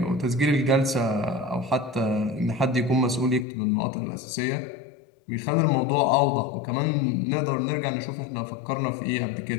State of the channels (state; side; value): drops out; right; at 3.5 s